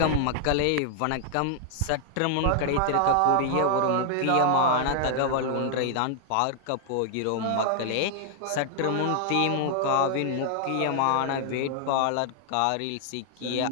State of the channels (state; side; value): different; both; correlation 0.00